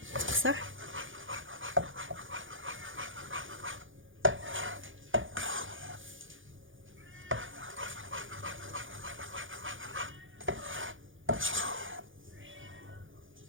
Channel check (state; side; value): late; left; 0.57 ms